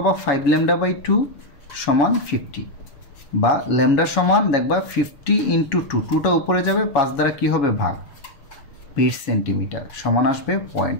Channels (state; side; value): late; right; 7.1 ms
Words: 5 ল্যামডা বাই 2 সমান 50, বা ল্যামডা সমান দেখবা 50 ইন্টু 2, 2টা উপরে যাবে, 5 দ্বারা কি হবে ভাগ, 20 সেন্টিমিটার সমান আসবে